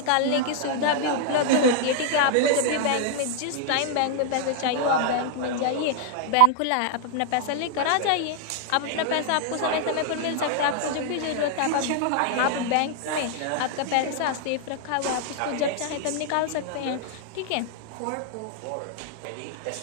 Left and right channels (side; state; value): both; different; correlation 0.00